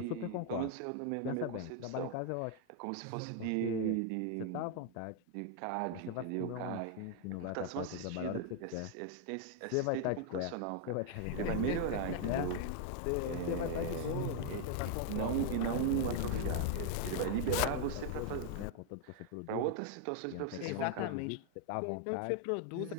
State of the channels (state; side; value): different; both; correlation 0.00